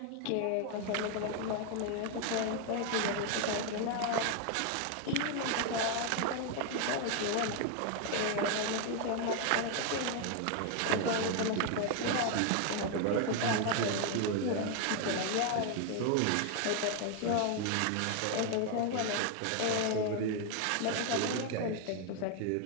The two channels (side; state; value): both; different; correlation 0.01